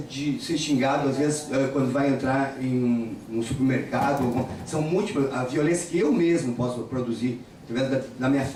ser xingado, às vezes, quando vai entrar em um supermercado. São múltiplas. A violência que eu mesmo posso produzir, através da minha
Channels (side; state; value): both; identical; correlation 1.00